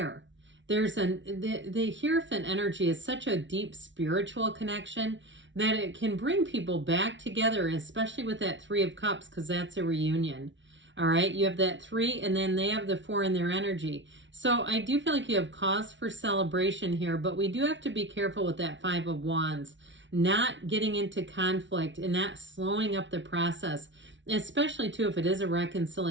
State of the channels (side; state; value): left; late; 0.55 ms